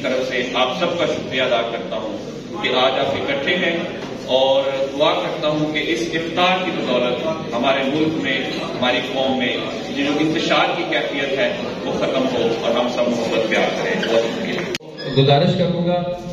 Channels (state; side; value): identical; both; correlation 1.00